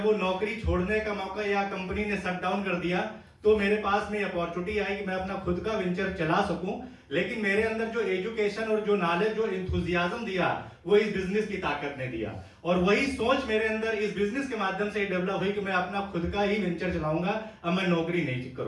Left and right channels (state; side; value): identical; both; correlation 1.00